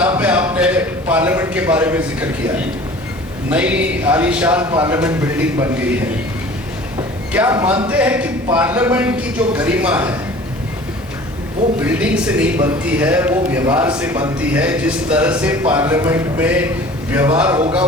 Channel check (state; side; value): normal; both; correlation 0.45